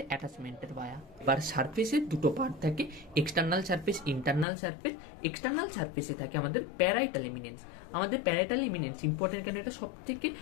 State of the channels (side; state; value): right; drops out; at 4.5 s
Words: অ্যাটাচমেন্টের বায়া। এবার সারফেসের দুটো পার্ট থাকে, external surface, internal surface. External সারফেসে থাকে আমাদের প্যারাইটাল এমিনেন্স। আমাদের প্যারাইটাল এমিনেন্স ইম্পর্টেন্ট, কেন এটা সব থেকে